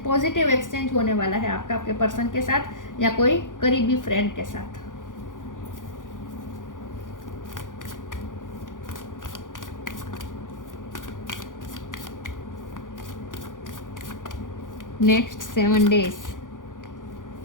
पॉजिटिव एक्सचेंज होने वाला है आपका आपके पर्सन के साथ या कोई करीबी फ्रेंड के साथ। Next 7 days,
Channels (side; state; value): right; late; 0.88 ms